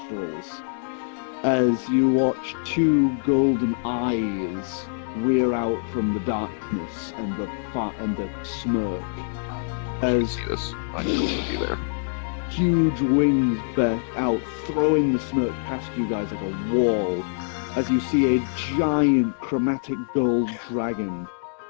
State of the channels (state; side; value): silent; right; digital silence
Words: As you watch two golden eyes rear out from the darkness and the smoke. As I need to be there. huge wings burst out, throwing the smoke past you guys like a wall. As you see a giant chromatic gold dragon